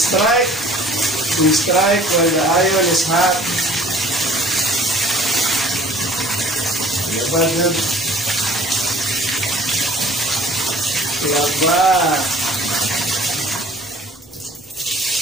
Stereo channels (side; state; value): both; normal; correlation 0.52